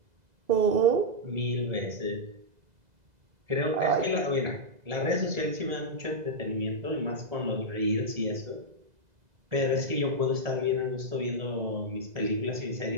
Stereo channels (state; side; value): late; left; 2.0 ms